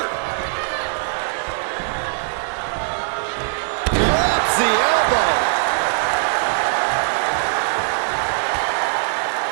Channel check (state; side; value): silent; left; digital silence